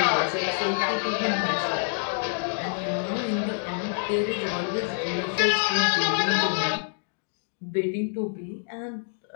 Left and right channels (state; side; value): silent; right; digital silence